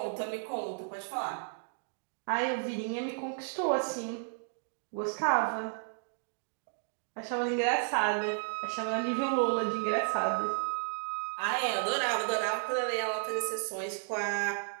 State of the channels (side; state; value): left; silent; digital silence